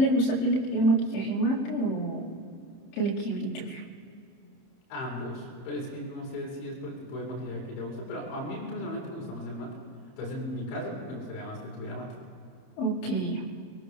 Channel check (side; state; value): right; late; 30 ms